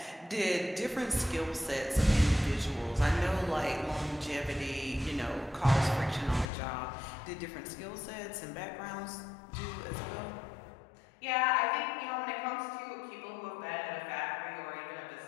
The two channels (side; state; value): right; drops out; at 6.5 s